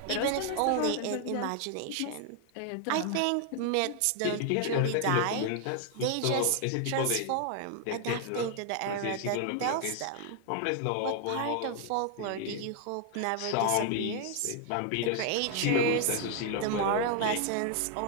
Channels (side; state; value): both; different; correlation 0.00